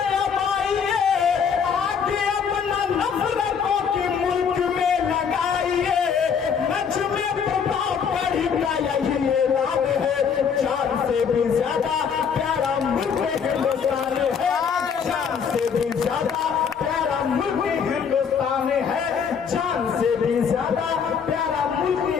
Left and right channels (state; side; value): quieter; right; 6.8 dB